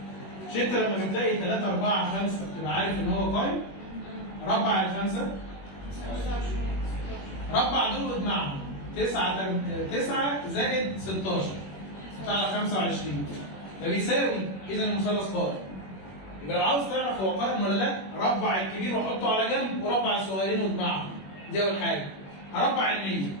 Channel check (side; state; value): right; late; 21 ms